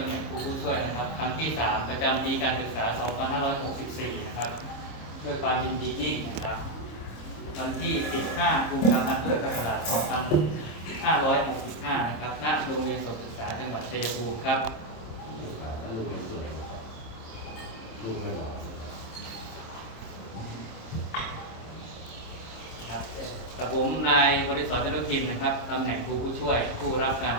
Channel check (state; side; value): late; right; 26 ms